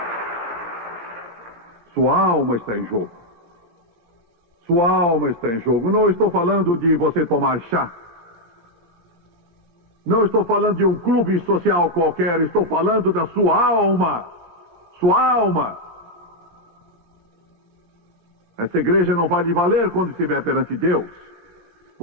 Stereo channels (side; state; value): left; late; 16 ms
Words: Sua alma está em jogo. Sua alma está em jogo. Não estou falando de você tomar chá. Não estou falando de um clube social qualquer. Estou falando da sua alma. Sua alma. Essa igreja não vai lhe valer quando estiver perante Deus.